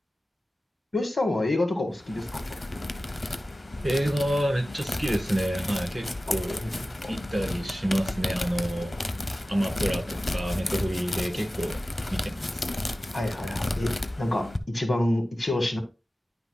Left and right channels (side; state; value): both; normal; correlation 0.96